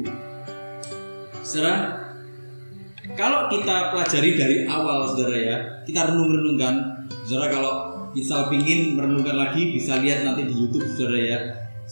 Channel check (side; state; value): both; inverted; correlation -1.00